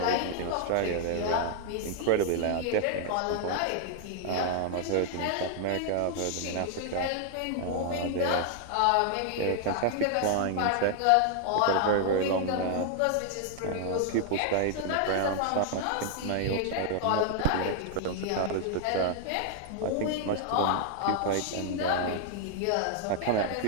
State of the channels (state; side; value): different; both; correlation -0.01